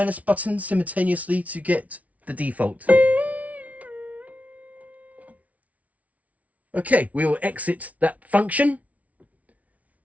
button simultaneously to get the default. Okay, we will exit that function.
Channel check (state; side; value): late; left; 0.069 ms